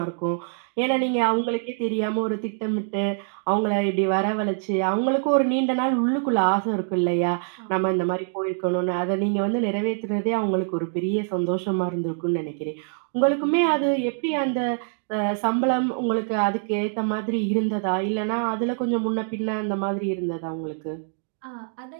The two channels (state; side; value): silent; left; digital silence